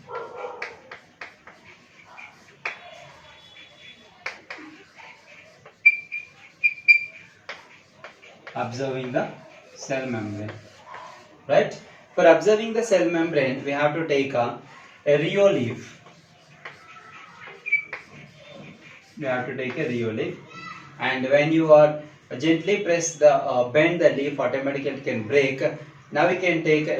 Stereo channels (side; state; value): both; identical; correlation 1.00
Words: Observing the cell membrane. Right? For observing the cell membrane, we have to take a Rio leaf. We have to take a Rio leaf, and when you are gently press the bend the leaf, automatically it can break. Now we can take